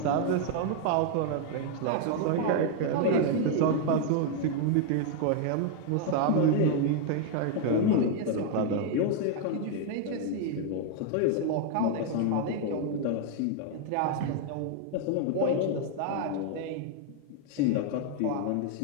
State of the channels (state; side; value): different; both; correlation 0.00